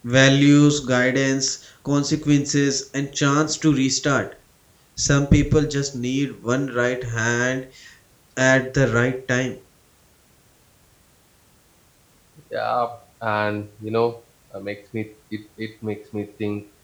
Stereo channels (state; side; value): identical; both; correlation 1.00